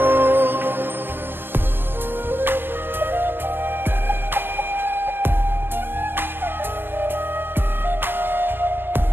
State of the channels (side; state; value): left; late; 0.10 ms